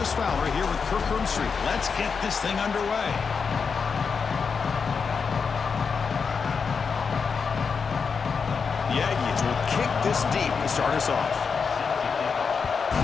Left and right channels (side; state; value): right; quieter; 5.6 dB